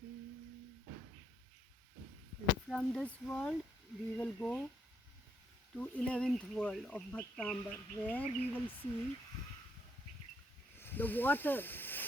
And from this world we will go to 11th world of Bhaktambar, where we will see the water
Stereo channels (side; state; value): both; normal; correlation 0.72